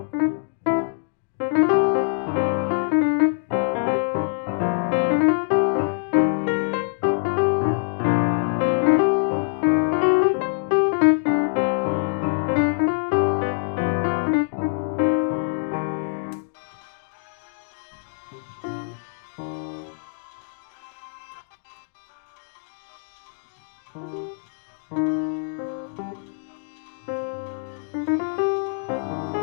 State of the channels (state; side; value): silent; right; digital silence